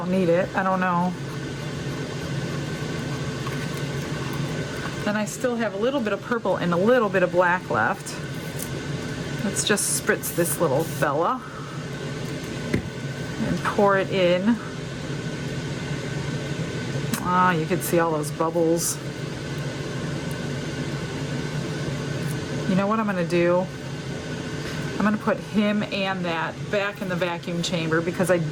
need it. I don't know. Then I still have a little bit of purple and a little bit of black left. Let's just spritz this little fella and pour it in. Ah, you can see all those bubbles. You know what I'm going to do? I'm going to put him and that back in the vacuum chamber because I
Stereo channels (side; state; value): both; identical; correlation 1.00